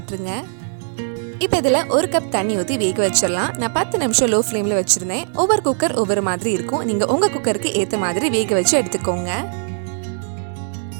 இப்போ இதில் 1 கப் தண்ணி ஊற்றி வேக வச்சிடலாம். நான் 10 நிமிஷம் லோ ஃப்ளேமில் வச்சுருந்தேன். ஒவ்வொரு குக்கர் ஒவ்வொரு மாதிரி இருக்கும். நீங்கள் உங்கள் குக்கருக்கு ஏற்ற மாதிரி வேக வச்சு எடுத்துக்கோங்க.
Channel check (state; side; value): silent; left; digital silence